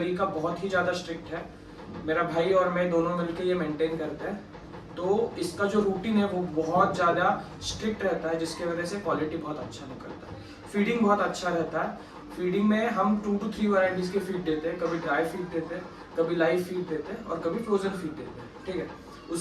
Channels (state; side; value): identical; both; correlation 1.00